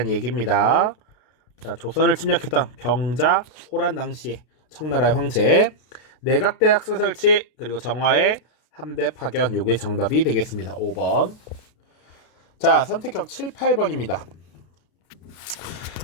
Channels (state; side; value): late; right; 32 ms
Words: 얘기입니다. 자, 조선을 침략했던 병자, 호란 당시에 청나라의 황제, 내각대학서 설치, 그리고 정화의 함대 파견. 요게 정답이 되겠습니다. 5번. 자, 선택형 7, 8번입니다.